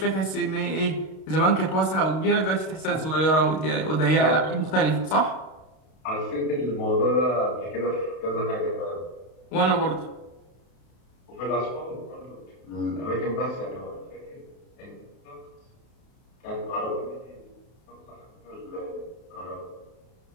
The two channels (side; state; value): right; late; 32 ms